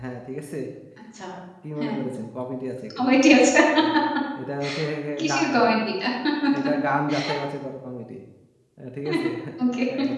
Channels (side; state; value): both; identical; correlation 1.00